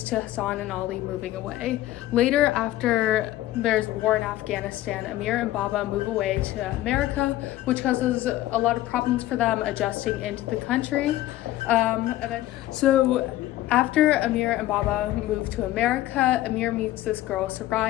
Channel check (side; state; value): right; quieter; 15.1 dB